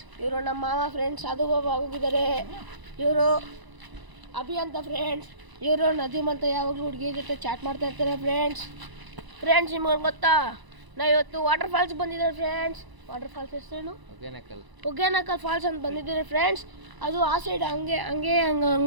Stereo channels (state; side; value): late; left; 1.0 ms